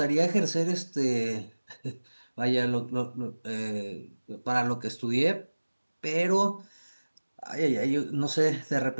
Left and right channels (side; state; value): both; inverted; correlation -1.00